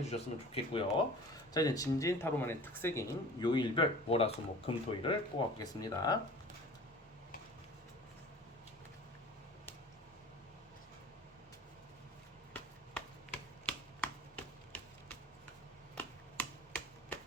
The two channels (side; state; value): both; normal; correlation 0.42